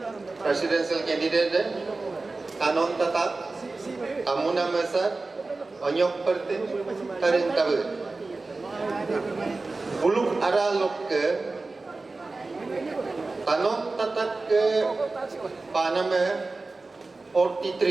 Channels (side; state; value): left; quieter; 3.5 dB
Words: presidential candidate kanon tatak tamuna masa onyok pertin tarin tabu buluk ara lok ke kanon tatak ke panama